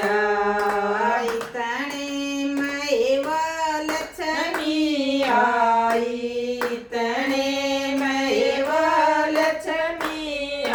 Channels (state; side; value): identical; both; correlation 1.00